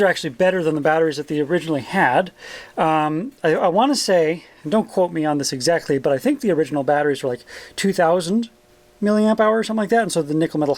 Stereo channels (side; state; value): both; identical; correlation 1.00